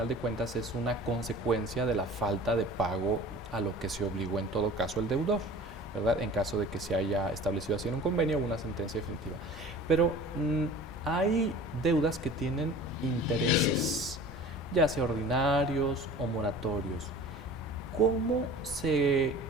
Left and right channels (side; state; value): both; normal; correlation 0.42